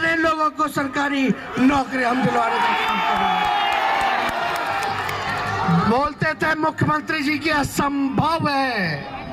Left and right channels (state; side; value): identical; both; correlation 1.00